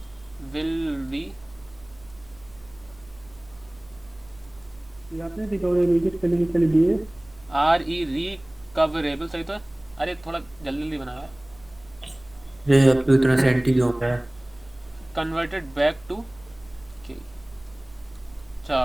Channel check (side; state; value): right; noise; hum, 27 dB below the sound